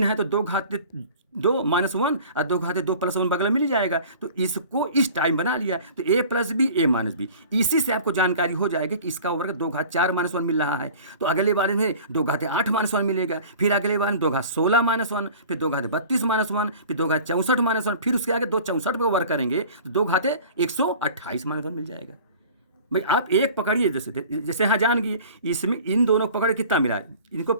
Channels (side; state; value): both; inverted; correlation -0.44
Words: है तो 2 - 1 और 2 घाते 2 + 1 बगल मिल जाएगा, तो इसको इस टाइम बना लिया, तो a + b a - b, इसी से आपको जानकारी हो जाएगी कि इसका वर्ग 2 घात 4 - 1 मिल रहा है। तो अगले बार में 2 घाते 8 - 1 मिलेगा, फिर अगले बार में 2 घात 16 - 1, फिर 2 घाते 32 - 1, फिर 2 घात 64 - 1, फिर उसके आगे 2 64 को वर्ग करेंगे तो 2 घाते 128 - 1 मिल जाएगा। भाई आप एक पकड़िए, जैसे यहाँ जान गए, इसमें इन दोनों को पकड़ कितना मिला, इनको